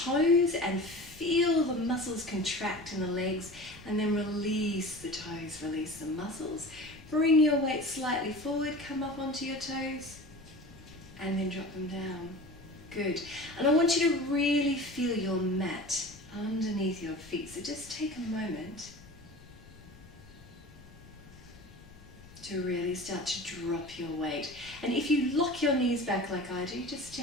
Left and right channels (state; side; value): noise; left; rumble, 20 dB below the sound